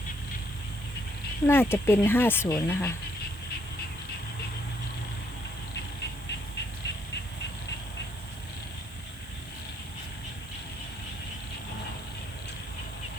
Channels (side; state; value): right; noise; hiss, 21 dB below the sound